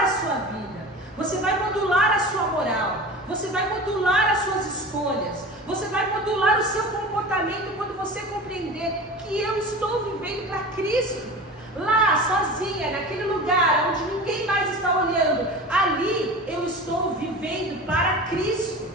a sua vida, você vai modular a sua moral, você vai modular as suas escolhas, você vai modular o seu comportamento quando você compreender que eu estou vivendo para Cristo. Lá, sozinha, naquele lugar onde ninguém mais está olhando, ali eu estou vivendo para Cristo.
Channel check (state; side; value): normal; both; correlation 0.34